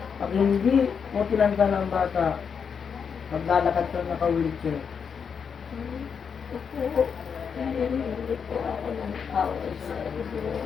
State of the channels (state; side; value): quieter; right; 6.6 dB